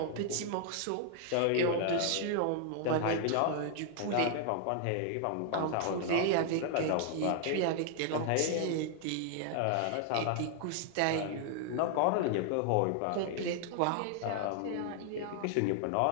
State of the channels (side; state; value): both; different; correlation 0.00